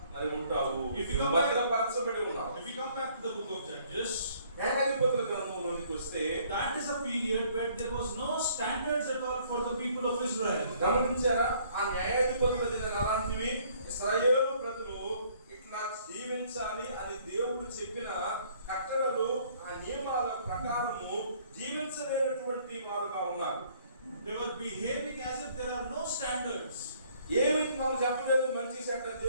మరి ఉంటావు. If you come భద్రపరచబడి ఉన్నావు. If you come back to the book of Judges, న్యాయాధిపతుల గ్రంథంలోనికి వస్తే, that is a period where there was no standards at all for the people of Israel. గమనించారా? ఆ న్యాయాధిపతుల దినాలు అలాంటివి. ఇశ్రాయేలు ప్రజలు ఇట్లా జీవించాలి అని దేవుడు చెప్పిన కట్టడలు, ఆ నియమాల ప్రకారము జీవించలేనటువంటి వారుగా ఉన్నారు. They were behaving as if there are no standards. ఏమి మనం చెప్పలేదు మంచి చెడ్డ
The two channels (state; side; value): inverted; both; correlation -0.61